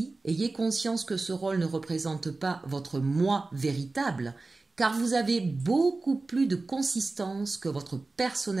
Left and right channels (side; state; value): left; quieter; 3.5 dB